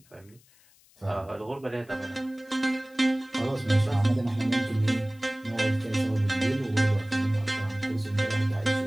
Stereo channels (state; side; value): noise; left; hiss, 29 dB below the sound